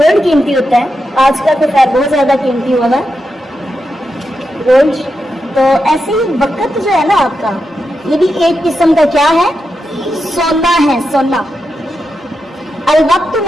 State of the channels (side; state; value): both; normal; correlation 0.87